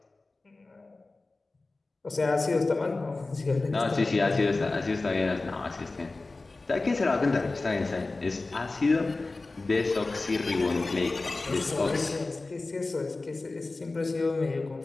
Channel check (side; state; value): right; quieter; 3.4 dB